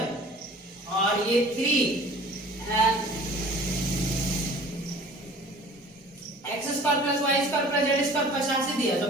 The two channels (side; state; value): both; normal; correlation 0.47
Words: और ये 3 x square plus y square plus z square 85 दिया, तो